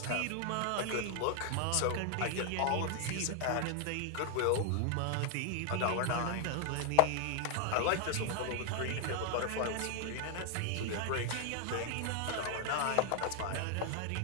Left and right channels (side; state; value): both; different; correlation 0.00